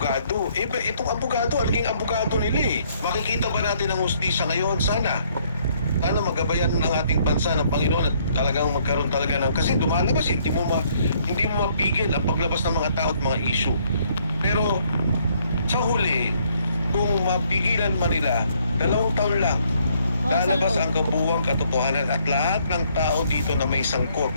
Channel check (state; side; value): inverted; both; correlation -0.67